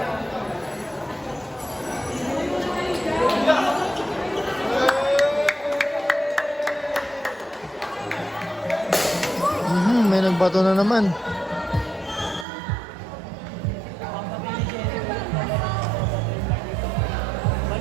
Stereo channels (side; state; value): left; drops out; at 12.5 s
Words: May nagbato na naman.